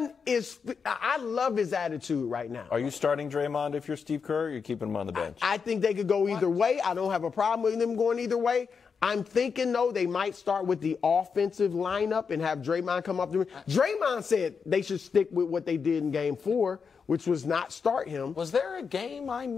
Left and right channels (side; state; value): right; quieter; 5.8 dB